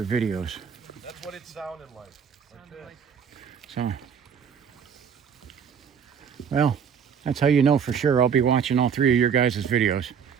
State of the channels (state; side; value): quieter; left; 7.2 dB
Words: videos. That's what it sounded like. Like this. So, well, that's how you know for sure I'll be watching all 3 of your guys' videos.